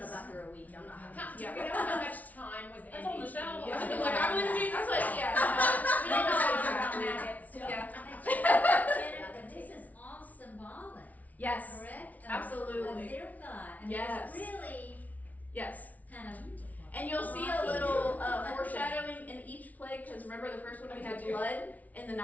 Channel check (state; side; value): late; right; 0.073 ms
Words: about her a week, I'm not having. How, do Yeah. you know how much time was in That's on the each shelf. year? I mean, like, I believe in Jesus. That's what, yeah. We don't know no, about no, no. maggots. Yeah. Jennifer, this is all symbolic, Yes. correct? Absolutely. Of their God. I mean, Yes. it's really Yes. kind of. And you'll see a little foreshadowing in each plague, because remember the first one we had blood in the